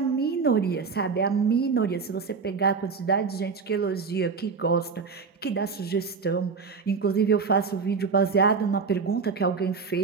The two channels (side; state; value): left; quieter; 5.1 dB